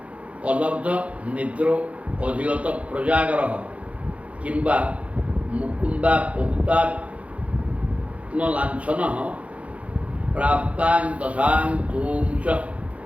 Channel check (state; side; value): late; left; 0.064 ms